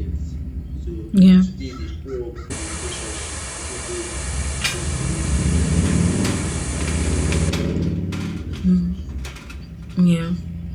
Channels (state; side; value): identical; both; correlation 1.00